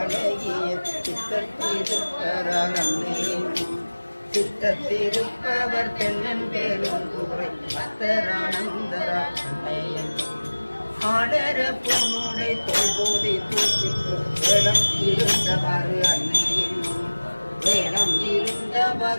சித்தத்திருப்பரால் அன்னே என்னும். சித்தத்திருப்பவர் தென்னன் பெரும் குறை அத்தரானந்தரா அன்னை என்னும். ஆடர பொன்னுடை தோல்போதை தூக்கிட்டு வேடம் இருந்தவாறு அன்னை என்னும். வேடம் இருந்தவ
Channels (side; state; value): both; inverted; correlation -1.00